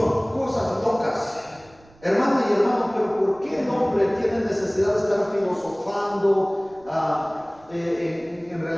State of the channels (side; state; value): right; noise; rumble, 28 dB below the sound